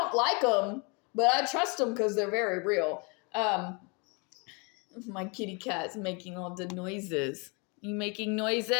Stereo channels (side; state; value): right; quieter; 32.2 dB